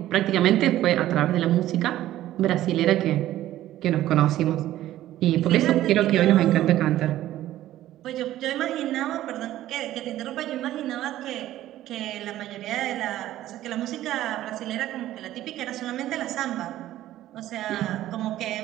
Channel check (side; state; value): left; quieter; 13.9 dB